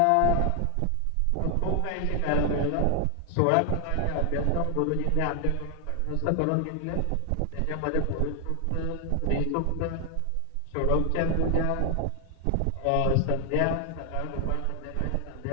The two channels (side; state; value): both; different; correlation 0.00